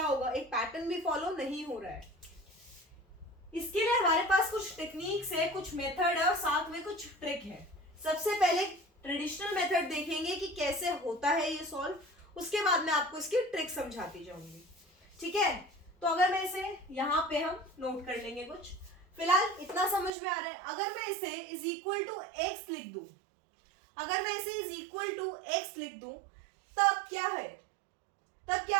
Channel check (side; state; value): left; drops out; at 20.1 s